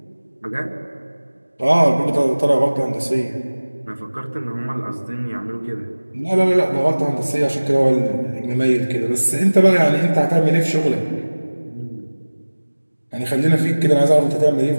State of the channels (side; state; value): both; inverted; correlation -1.00